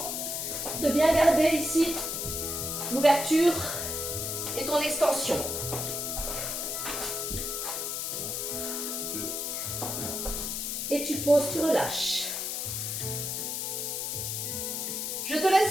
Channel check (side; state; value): left; noise; hiss, 2 dB below the sound